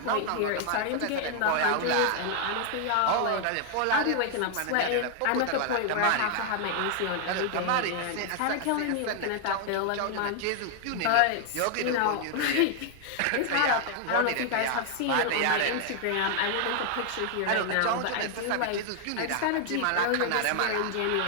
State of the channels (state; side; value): different; both; correlation 0.00